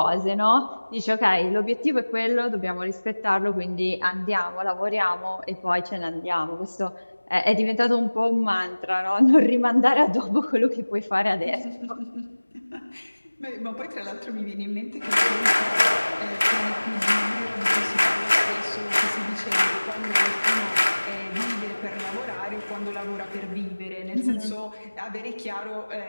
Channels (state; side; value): inverted; both; correlation -1.00